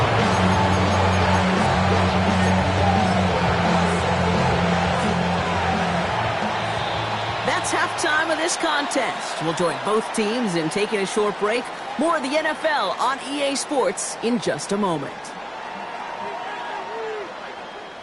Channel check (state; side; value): identical; both; correlation 1.00